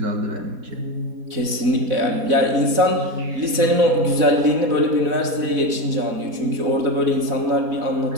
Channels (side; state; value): left; late; 4.0 ms